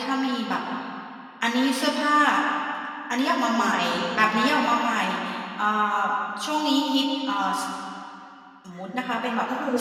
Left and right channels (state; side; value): identical; both; correlation 1.00